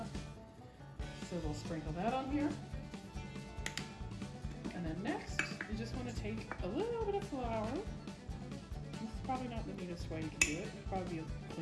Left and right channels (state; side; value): identical; both; correlation 1.00